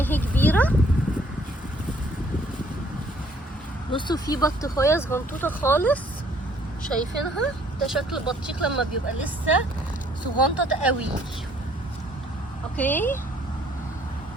اهي كبيرة. بصوا في بطيخية صغنطوطة خالص، شايفينها؟ ده شكل البطيخ لما بيبقى لسه صغنطط قوي. اوكي،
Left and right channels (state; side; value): normal; both; correlation 0.62